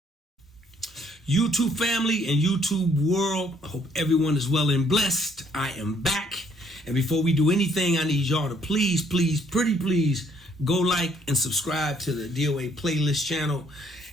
YouTube family and YouTube world, I hope everyone is well and blessed. I am back. And before we do anything, I need y'all to please, pretty please, go like and subscribe to the DOA playlist channel.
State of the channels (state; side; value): normal; both; correlation 0.65